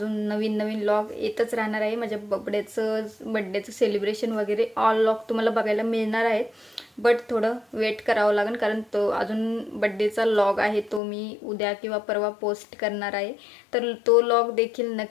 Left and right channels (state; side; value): drops out; right; at 11.0 s